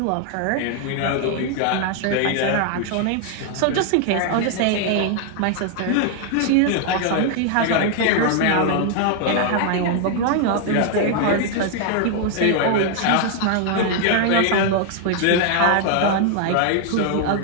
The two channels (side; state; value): both; different; correlation 0.00